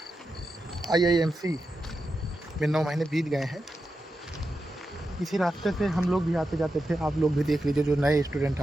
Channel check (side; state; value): both; normal; correlation 0.89